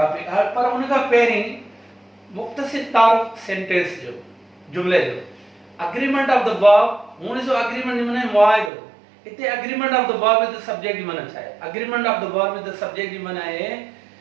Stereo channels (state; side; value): drops out; left; at 8.7 s